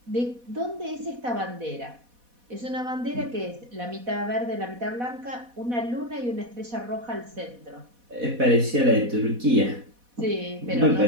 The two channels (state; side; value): late; left; 4.1 ms